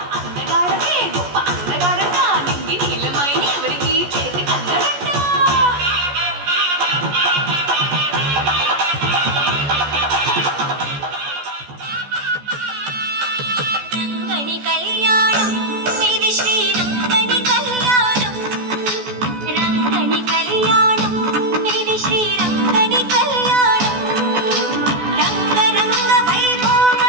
అందగాడకే గొప్ప అందగాడంట నింగి నీలమైన ఎవరికి చేతి కందడంట రంగని కళ్యాణం ఇది శ్రీరంగని కళ్యాణం రంగని కళ్యాణం ఇది శ్రీరంగని కళ్యాణం రంగరంగ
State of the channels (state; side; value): late; left; 14 ms